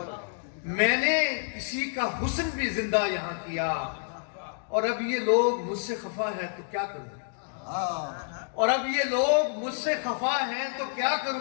میں نے کسی کا حسن بھی زندہ یہاں کیا۔ اور اب یہ لوگ مجھ سے خفا ہے تو کیا کروں، اور اب یہ لوگ مجھ سے خفا ہیں تو کیا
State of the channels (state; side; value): silent; right; digital silence